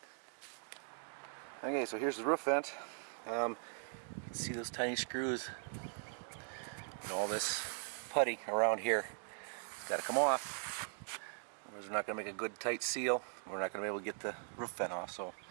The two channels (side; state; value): left; silent; digital silence